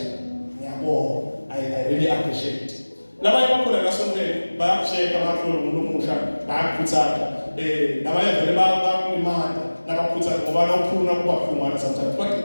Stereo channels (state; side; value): inverted; both; correlation -1.00